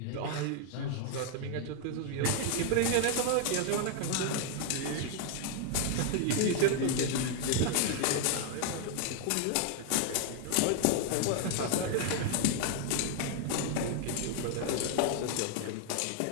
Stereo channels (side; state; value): both; different; correlation 0.00